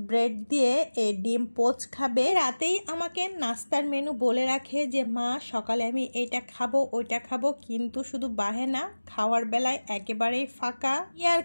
ব্রেড দিয়ে এই ডিম পোচ খাবে। রাতেই আমাকে নাস্তার মেনু বলে রাখে যে মা সকালে আমি এটা খাবো ওইটা খাবো, কিন্তু শুধু বাহেনা, খাওয়ার বেলায় একেবারেই ফাঁকা। ইয়ার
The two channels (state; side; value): inverted; both; correlation -1.00